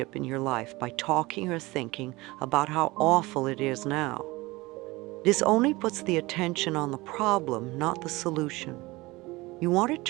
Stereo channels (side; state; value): left; quieter; 21.4 dB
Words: in your life by talking or thinking about how awful it is now. This only puts the attention on the problem, not the solution. You want to